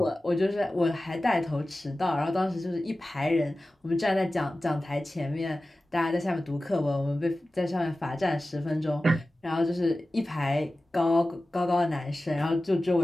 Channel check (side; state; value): both; normal; correlation 0.96